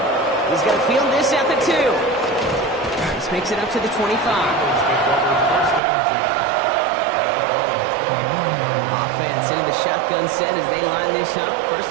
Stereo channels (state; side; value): drops out; left; at 5.8 s